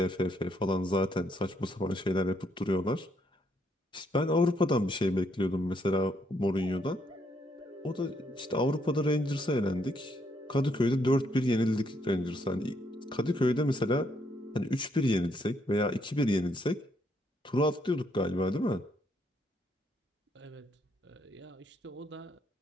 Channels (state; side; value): normal; both; correlation 0.73